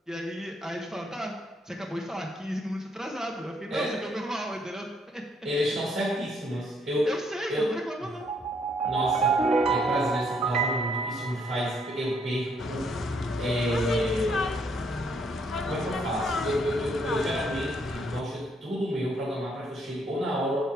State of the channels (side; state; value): both; normal; correlation 0.70